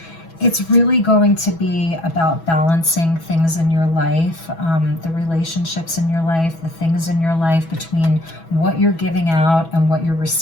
It's really going to be about balancing things in your life, the relationships in your life, the things in your life between what you're giving out and what you're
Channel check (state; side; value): late; right; 6.1 ms